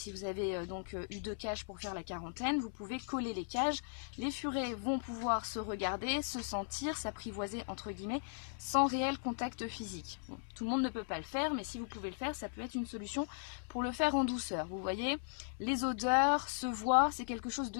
vous avez donc eu 2 cages pour faire la quarantaine, vous pouvez coller les cages. Les furets vont pouvoir se regarder, se sentir, s'apprivoiser entre guillemets, sans réel contact physique. Bon, tout le monde ne peut pas le faire, mais si vous pouvez le faire, ça peut être une solution pour le faire en douceur. Vous voyez, les odeurs se voient, c'est quelque chose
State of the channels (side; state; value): right; silent; 53 dB below the other